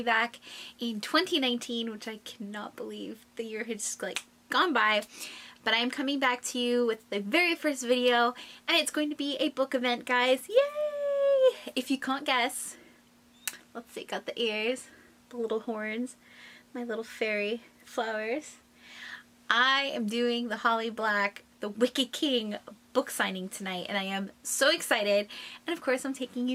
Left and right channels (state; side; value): identical; both; correlation 1.00